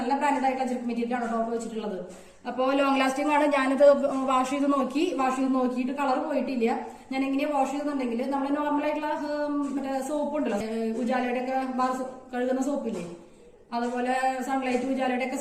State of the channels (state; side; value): identical; both; correlation 1.00